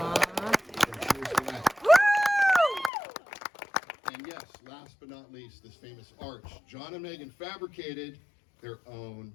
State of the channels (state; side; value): drops out; right; at 2.9 s